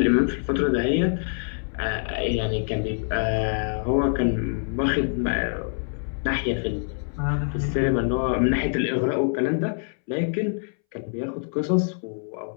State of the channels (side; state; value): right; silent; 62 dB below the other